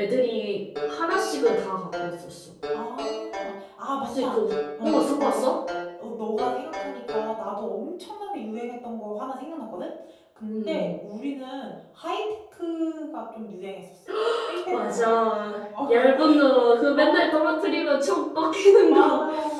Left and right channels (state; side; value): identical; both; correlation 1.00